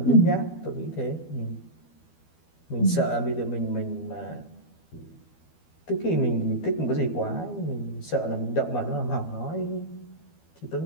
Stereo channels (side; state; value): right; late; 12 ms